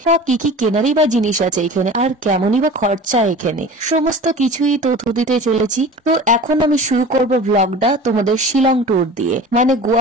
বা কি কি কেনারই বা জিনিস আছে এখানে, আর কেমনই বা খরচা এখানে, সমস্ত কিছুই তথ্য দিতে চলেছি। তো এখন আমি শুরু করব ব্লগটা তোমাদের শিলং ট্যুর দিয়ে, মানে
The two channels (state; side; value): normal; both; correlation 0.38